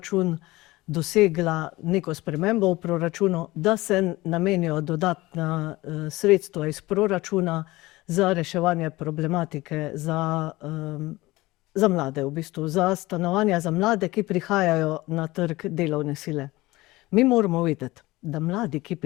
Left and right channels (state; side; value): quieter; right; 19.7 dB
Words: dosegla neko spremembo v proračunu, da se namenijo dodatna sredstva iz proračuna za reševanje problematike za mlade, v bistvu, za stanovanja za mlade, ki prihajajo na trg delovne sile. Mi moramo vedeti, da mladi, ki